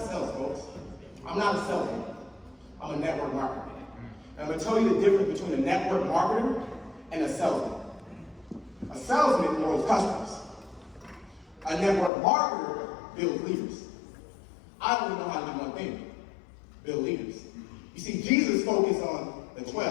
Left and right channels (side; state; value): right; drops out; at 12.1 s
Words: sales, folks. I'm not a salesman. I'm a network marketer. And I'm going to tell you the difference between a network marketer and a salesman. A salesman grows customers. A network marketer builds leaders. I only know how to do one thing, build leaders. You see, Jesus focused on the